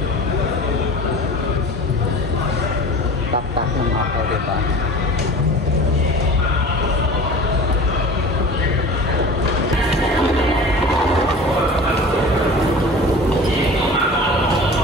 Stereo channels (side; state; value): both; normal; correlation 0.39